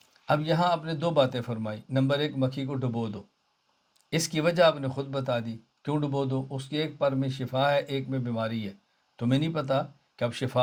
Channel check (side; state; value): both; identical; correlation 1.00